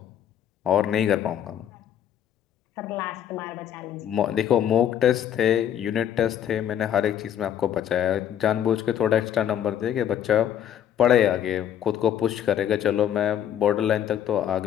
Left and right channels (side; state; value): right; quieter; 10.0 dB